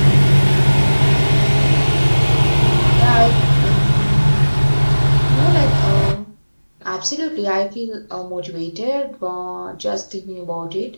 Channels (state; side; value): inverted; both; correlation -1.00